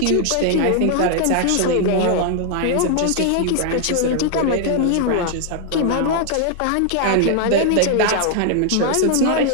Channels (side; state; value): both; different; correlation 0.00